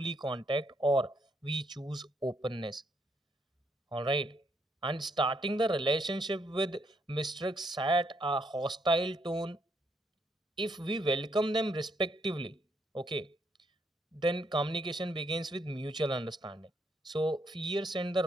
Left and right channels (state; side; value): normal; both; correlation 0.74